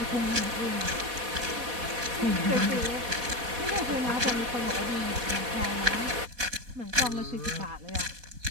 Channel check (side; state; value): left; late; 4.1 ms